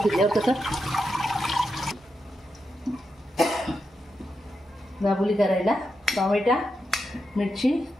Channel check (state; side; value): normal; both; correlation 0.86